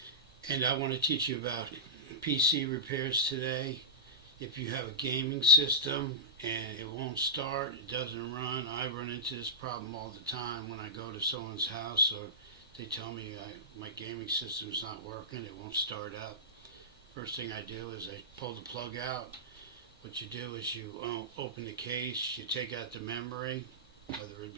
And I want to teach you about PC repairs today. If you have a gaming system and it won't start, it doesn't run. I run into this problem all the time when I go to someone's house, or they tell me my gaming system's not working, it won't start up. First thing I do is I pull the plug out. What you do is you open the case, you take out the memory, whether it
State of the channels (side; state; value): both; normal; correlation -0.12